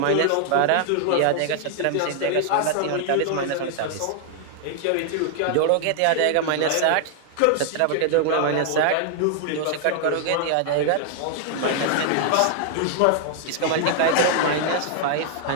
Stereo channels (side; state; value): both; different; correlation 0.00